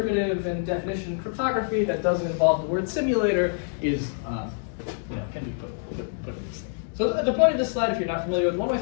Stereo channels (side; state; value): right; silent; 59 dB below the other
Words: and definition cryptography that doesn't involve the word simulator is, can be put in this thing. So the point of this slide, if you're not familiar with one-way